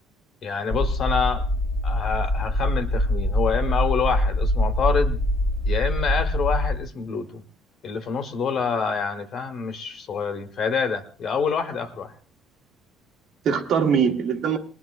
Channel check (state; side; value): normal; both; correlation 0.63